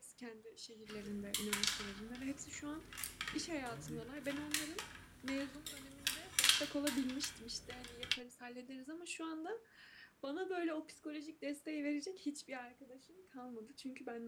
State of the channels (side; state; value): both; identical; correlation 1.00